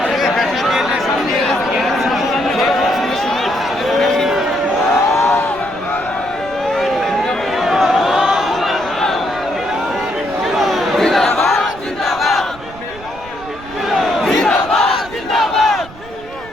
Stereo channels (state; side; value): noise; right; rumble, 18 dB below the sound